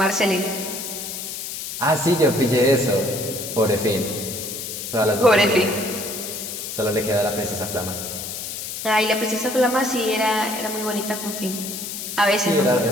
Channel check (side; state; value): left; noise; hiss, 7 dB below the sound